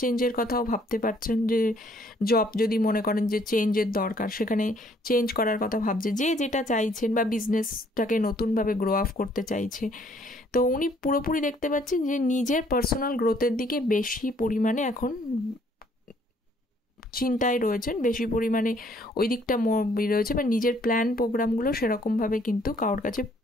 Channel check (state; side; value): normal; both; correlation 0.63